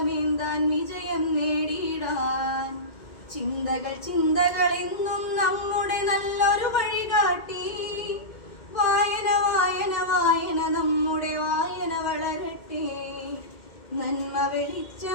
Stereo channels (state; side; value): late; right; 2.1 ms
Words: വിജയം നേടിയിടാൻ. ചിന്തകൾ ചിന്തകൾ എന്നും നമ്മുടെ നല്ലൊരു വഴികാട്ടി. വായന വായന വായന നമ്മുടെ വായന വളരട്ടെ, നന്മ